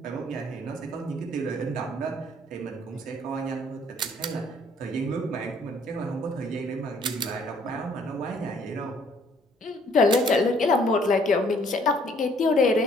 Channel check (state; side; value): normal; both; correlation 0.61